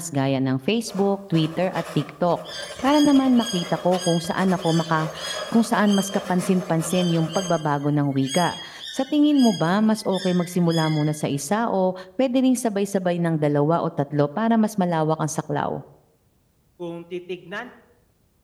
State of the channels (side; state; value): both; identical; correlation 1.00